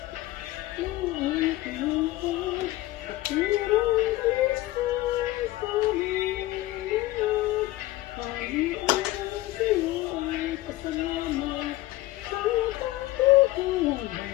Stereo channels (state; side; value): quieter; right; 17.1 dB